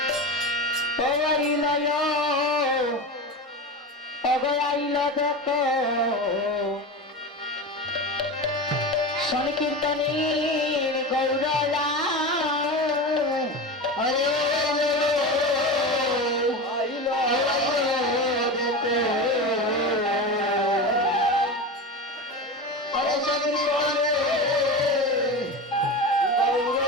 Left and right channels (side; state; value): both; normal; correlation 0.25